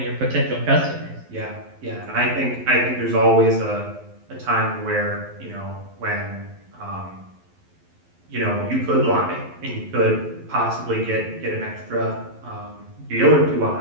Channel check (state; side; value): late; left; 11 ms